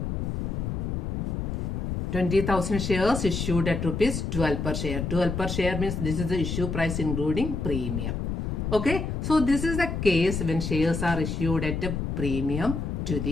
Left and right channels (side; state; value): left; noise; rumble, 2 dB below the sound